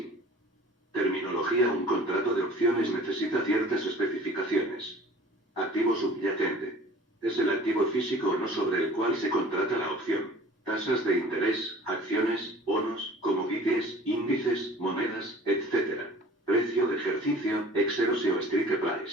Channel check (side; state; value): both; normal; correlation 0.46